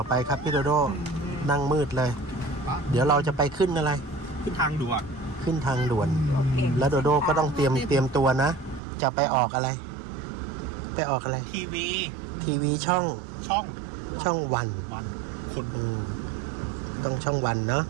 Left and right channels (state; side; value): drops out; left; at 8.8 s